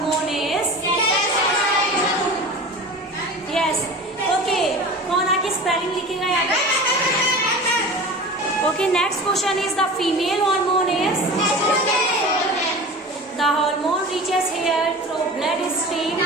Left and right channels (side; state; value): both; normal; correlation 0.35